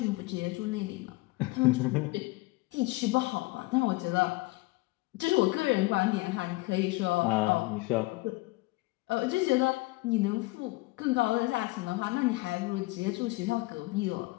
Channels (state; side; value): quieter; right; 22.0 dB